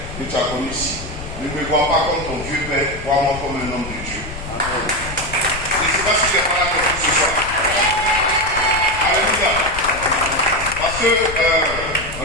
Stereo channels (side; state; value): left; noise; rumble, 11 dB below the sound